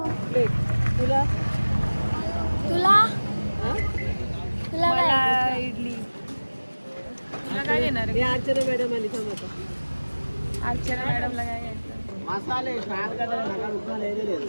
तुला तुला मला इडली. तुला काय देणार आहे? अर्चना मॅडम आली थांब आता. अर्चना मॅडमला काय घ्यायचं? मसाले फ्राय करता नका उठवा लेले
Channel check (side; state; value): both; inverted; correlation -1.00